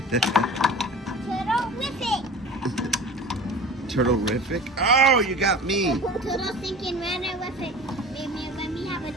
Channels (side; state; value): both; normal; correlation 0.38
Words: Turtle-rific. Oh, you got me. Turtle thinking runner with it. Let me have a